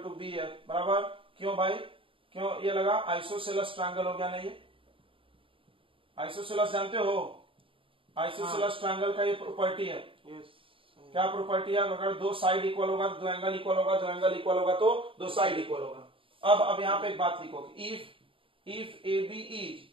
B F बराबर, क्यों भाई क्यों ये लगा, आइसोसेलेस ट्रायंगल हो गया ना, ये आइसोसेलेस जानते हो, आइसोसेलेस ट्रायंगल का ये प्रॉपर्टी है, क्या प्रॉपर्टी है, अगर दो साइड इक्वल होगा तो दो एंगल इक्वल होगा, दो एंगल इक्वल होगा तो दो साइड इक्वल होगा। अब यहाँ पे एक बात लिखो, if A B is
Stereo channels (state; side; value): late; left; 0.26 ms